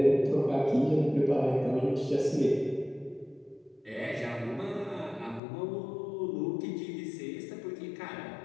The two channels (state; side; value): drops out; right; at 5.4 s